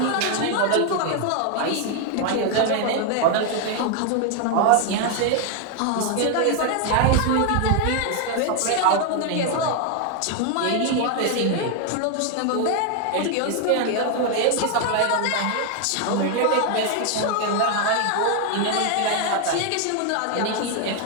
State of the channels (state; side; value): different; both; correlation 0.00